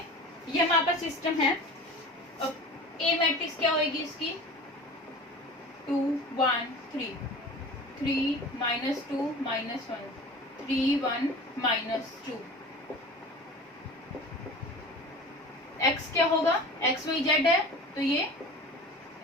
ये हमारे पास सिस्टम है। अब ए मैट्रिक्स क्या होगी इसकी, 2 1 3, 3 -2 -1, 3 1 -2। x क्या होगा, x y z है, तो ये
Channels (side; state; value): both; normal; correlation 0.37